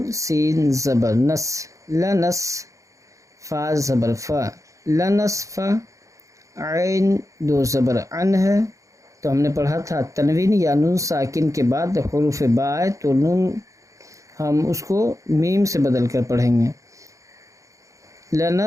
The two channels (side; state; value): left; late; 0.15 ms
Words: سین زبر نس، لنس، فا زبر فا، لنصف، عین دو زبر عن ہے، تو ہم نے پڑھا تھا تنوین یا نون ساکن کے بعد حروف با ہے تو نون ہم اس کو میم سے بدل کر پڑھیں گے،